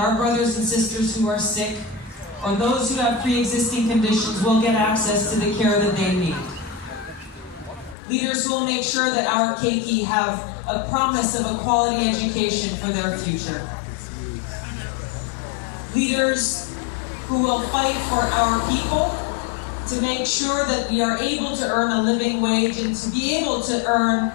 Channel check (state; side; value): drops out; right; at 8.0 s